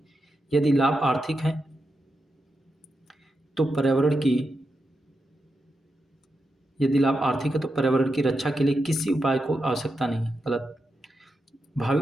यदि लाभ आर्थिक है तो पर्यावरण की यदि लाभ आर्थिक है तो पर्यावरण की रक्षा के लिए किसी उपाय को आवश्यकता नहीं है। गलत।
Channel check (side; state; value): both; normal; correlation 0.87